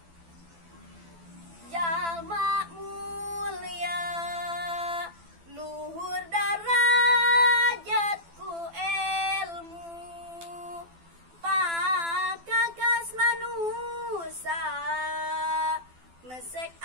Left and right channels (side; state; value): left; late; 12 ms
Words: Jalma mulia, luhur darajatku ilmu, pakakas manusia, mesek